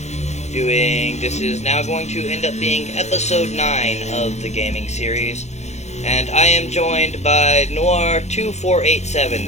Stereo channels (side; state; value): right; late; 0.33 ms